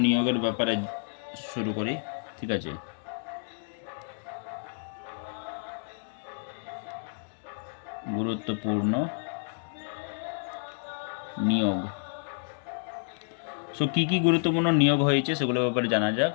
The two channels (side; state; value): right; silent; digital silence